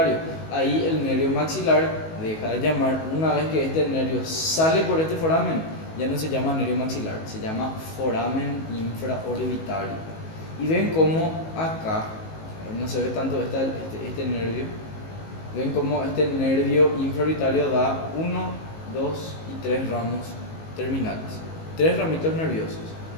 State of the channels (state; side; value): late; right; 19 ms